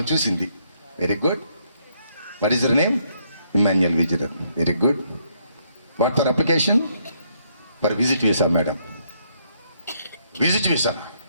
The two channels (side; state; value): both; inverted; correlation -0.72